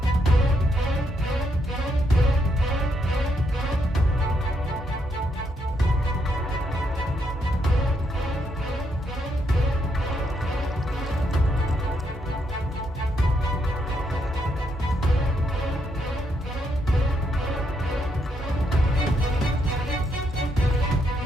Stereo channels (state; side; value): normal; both; correlation 0.77